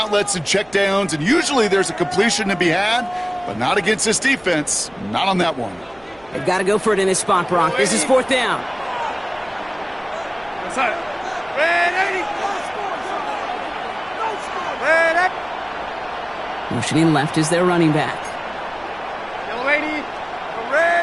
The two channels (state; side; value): noise; right; hum, 28 dB below the sound